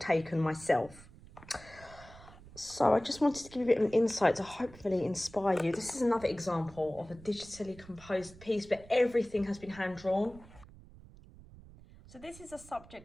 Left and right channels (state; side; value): noise; right; rumble, 20 dB below the sound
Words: myself. So I just wanted to give you a bit of an insight to hopefully inspire you. This is another example of a digitally composed piece, but everything has been hand drawn. So this is a